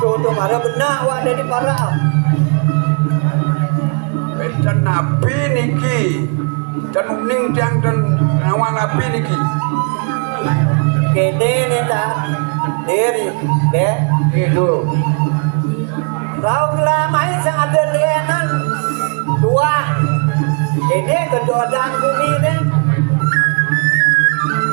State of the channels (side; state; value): left; quieter; 39.4 dB